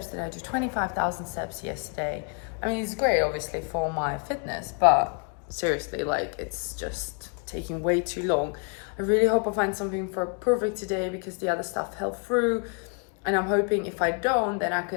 did I do? 25,000 steps yesterday. I mean, it's great obviously for my fitness, but seriously, like, it's just taking way too long. I really hope I find something for perfect today because the other stuff fell through, and I'm hoping if I don't, then I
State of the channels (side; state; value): right; quieter; 39.4 dB